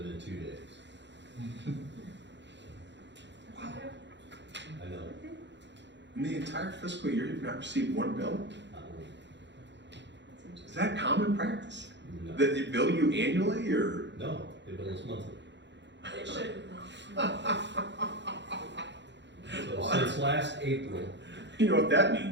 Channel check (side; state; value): left; late; 0.52 ms